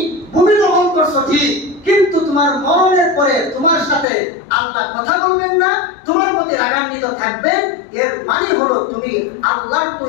ভূমি দখল করছো ঠিক, কিন্তু তোমার মরণের পরে তোমার সাথে আল্লাহ কথা বলবেন না, তোমার প্রতি রাগান্বিত থাকবেন। এর মানে হলো তুমি আল্লাহর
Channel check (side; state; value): right; drops out; at 4.0 s